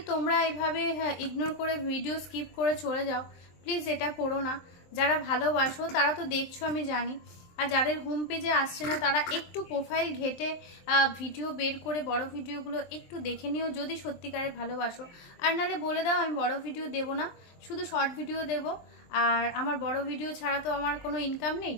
তোমরা এইভাবে ইগনোর করে ভিডিও স্কিপ করে চলে যাও, প্লিজ এটা করো না। যারা ভালোবাসো তারা তো দেখছো আমি জানি, আর যাদের হোম পেজে আসছে না তারা একটু প্রোফাইল ঘেটে ভিডিও বের করে বড় ভিডিওগুলো একটু দেখে নিও যদি সত্যিকারের ভালোবাসো। আর নালে বলে দাও আমি বড় ভিডিও দেব না, শুধু শর্ট ভিডিও দেব। আর আমার বড় ভিডিও ছাড়া তো আমার কোনো ইনকাম নেই,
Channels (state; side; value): late; right; 23 ms